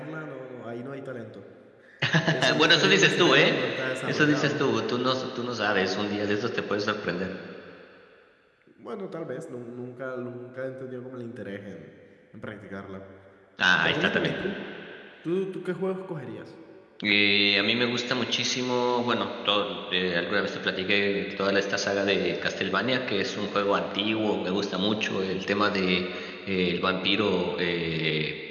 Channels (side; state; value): both; identical; correlation 1.00